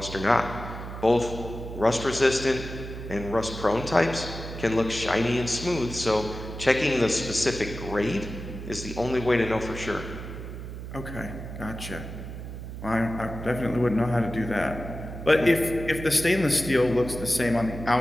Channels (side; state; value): right; noise; hum, 9 dB below the sound